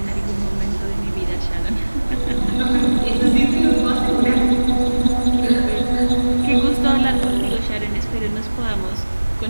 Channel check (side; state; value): both; inverted; correlation -1.00